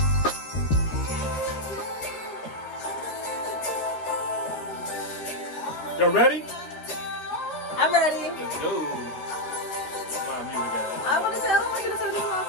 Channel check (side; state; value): right; late; 12 ms